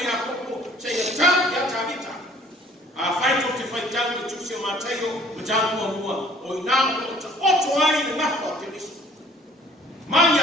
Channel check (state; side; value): normal; both; correlation 0.55